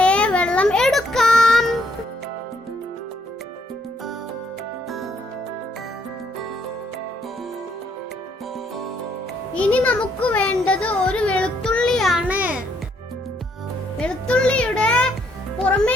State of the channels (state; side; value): normal; both; correlation 0.70